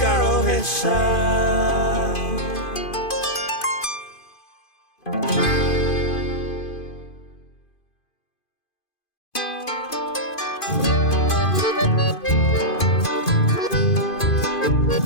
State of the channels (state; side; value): late; right; 2.5 ms